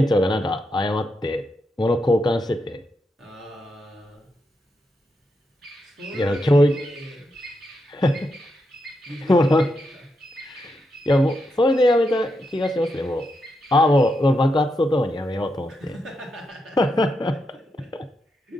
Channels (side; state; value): both; normal; correlation 0.84